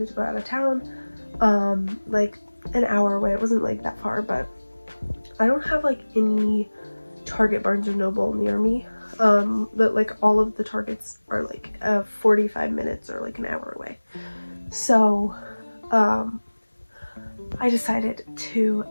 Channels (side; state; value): both; inverted; correlation -1.00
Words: to go out of town, like an hour away. It wasn't like that far, but I don't have like any Target, Barnes & Noble near me. But like all of the Targets are like 45 minutes or like an hour away. So I decided to